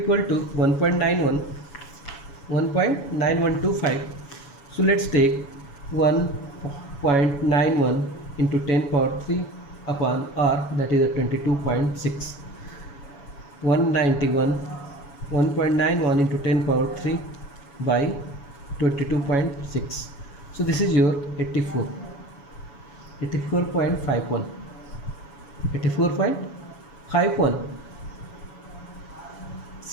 to 1.9125. So let's take 1.91 into 10 power 3 upon R, that is a 22.6. 191 into 10 power 3 by 22.6. So this is your 84.51.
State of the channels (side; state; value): right; late; 7.1 ms